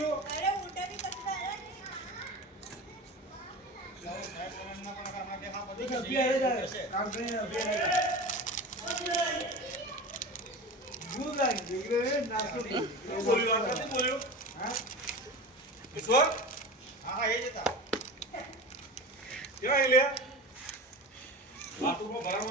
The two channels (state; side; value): normal; both; correlation 0.30